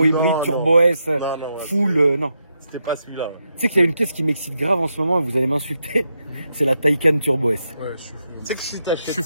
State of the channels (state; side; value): inverted; both; correlation -0.83